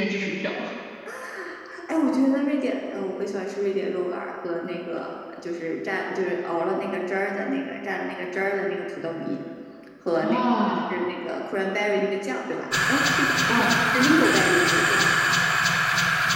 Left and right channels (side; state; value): both; identical; correlation 1.00